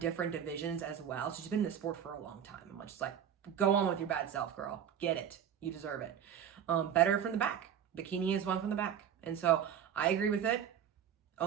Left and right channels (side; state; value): left; quieter; 8.8 dB